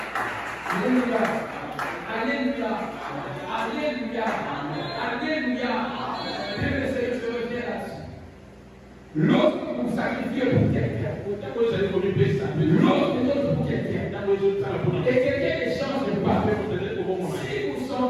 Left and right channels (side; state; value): both; identical; correlation 1.00